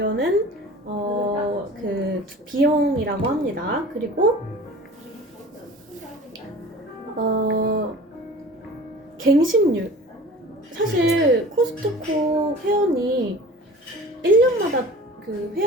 그 비용이라고 합니다. 그리고 갱신율. 사실 코스트코 회원이 1년마다 그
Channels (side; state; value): both; normal; correlation 0.41